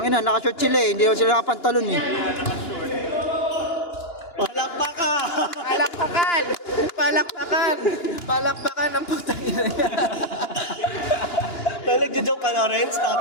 naka-short sila eh. Hindi naman sila nakapantalon eh. Palakpak ka! Palakpakan! Palakpakan! Palakpakan ang putang ina niya. Nagjo-joke ka na, Renz?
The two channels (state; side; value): late; right; 2.9 ms